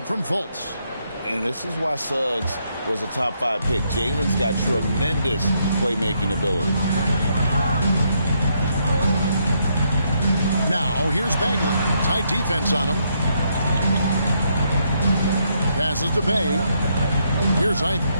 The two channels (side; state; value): both; inverted; correlation -0.75